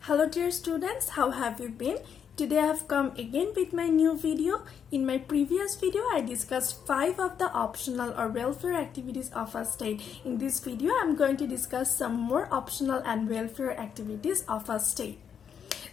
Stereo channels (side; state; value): right; quieter; 7.7 dB